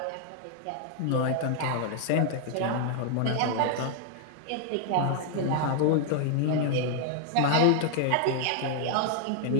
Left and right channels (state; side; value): different; both; correlation 0.00